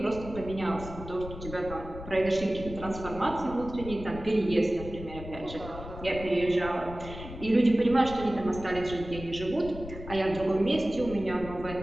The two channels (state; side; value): noise; left; rumble, 12 dB below the sound